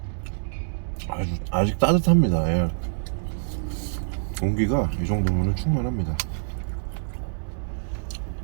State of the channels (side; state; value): left; silent; digital silence